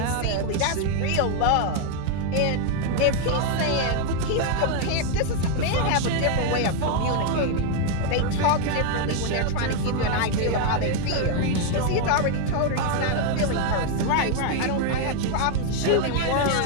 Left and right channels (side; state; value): both; different; correlation 0.01